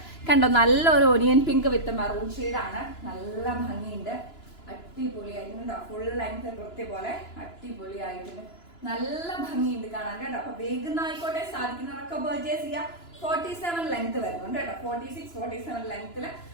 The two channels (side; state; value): right; late; 2.9 ms